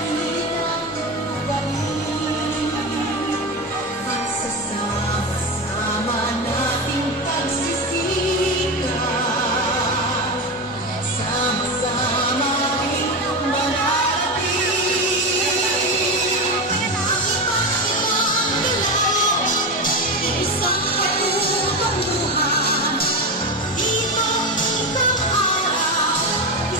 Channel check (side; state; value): both; normal; correlation 0.18